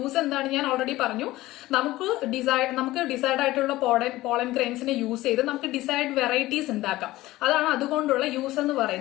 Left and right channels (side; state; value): right; quieter; 17.3 dB